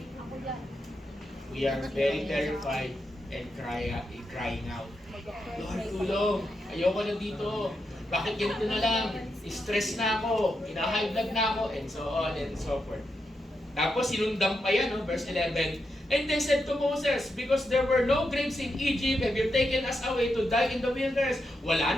we are very terrified and crying out. Lord, tulong. Ayoko na dito. Bakit ganito na lang? Stress na ako. High blood na ako. And so on and so forth. Tapos sinundan pa yan, no? Verse 11. And they said to Moses, because there were no graves in Egypt, have you taken us away to die in the wilderness? Wala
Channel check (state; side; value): normal; both; correlation 0.85